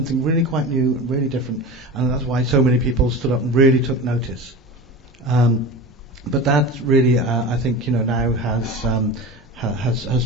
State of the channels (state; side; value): normal; both; correlation 0.30